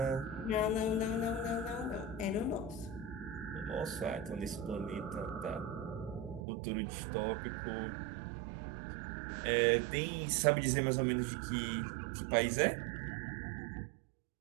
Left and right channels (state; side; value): drops out; left; at 6.5 s